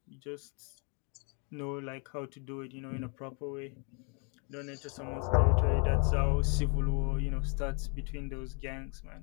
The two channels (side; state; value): right; quieter; 36.4 dB